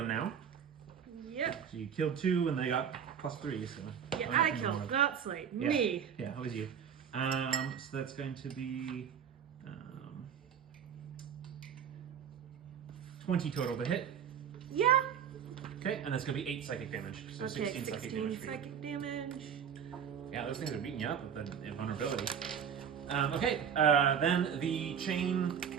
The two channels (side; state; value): left; quieter; 8.0 dB